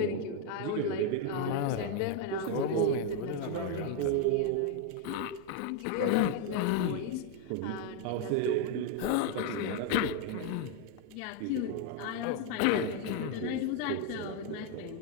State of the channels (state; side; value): different; both; correlation 0.01